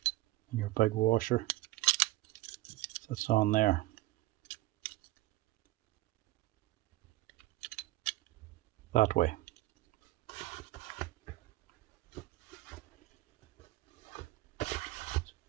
And your big washer sits on there. That way. It's a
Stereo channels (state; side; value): quieter; left; 18.2 dB